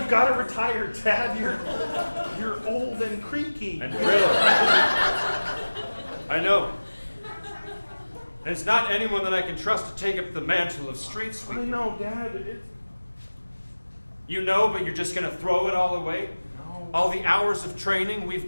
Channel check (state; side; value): inverted; both; correlation -1.00